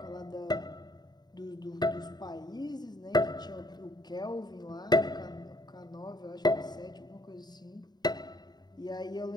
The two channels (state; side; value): late; right; 0.20 ms